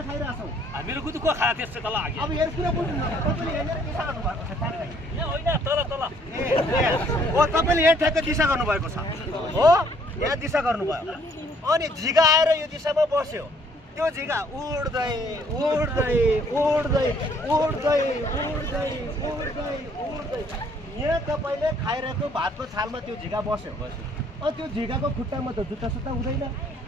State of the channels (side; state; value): both; normal; correlation 0.63